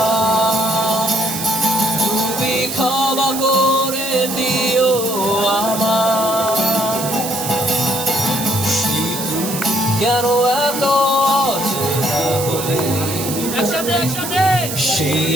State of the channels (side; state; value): right; noise; hiss, 6 dB below the sound